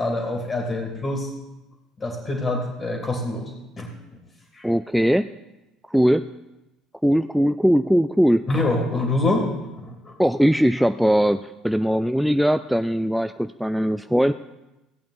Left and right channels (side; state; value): both; normal; correlation 0.92